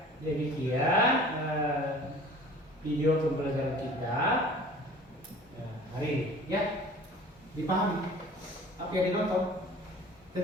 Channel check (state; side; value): normal; both; correlation 0.46